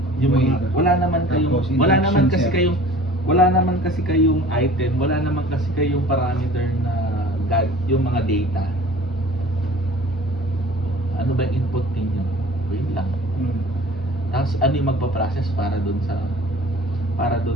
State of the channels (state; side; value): normal; both; correlation 0.45